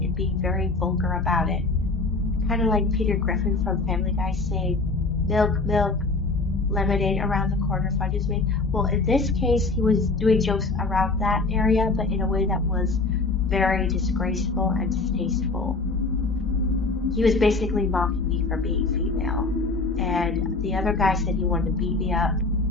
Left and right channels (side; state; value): right; quieter; 3.6 dB